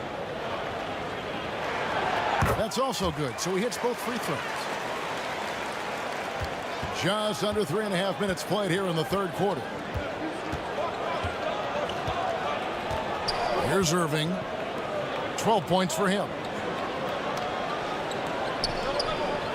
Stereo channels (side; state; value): both; identical; correlation 1.00